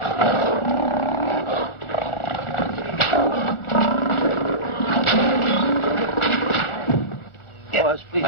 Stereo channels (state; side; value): late; right; 1.4 ms